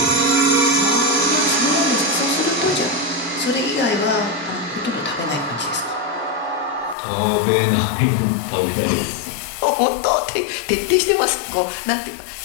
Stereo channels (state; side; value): drops out; right; at 7.0 s